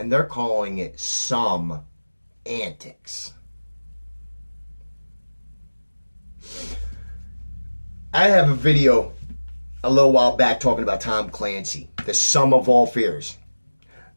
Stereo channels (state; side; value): inverted; both; correlation -1.00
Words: they're calling it some antics. I have a video a little while back talking about Tom Clancy, the sum of all fears.